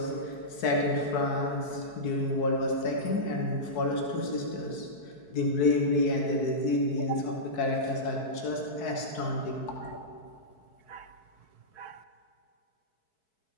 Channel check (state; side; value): late; right; 4.6 ms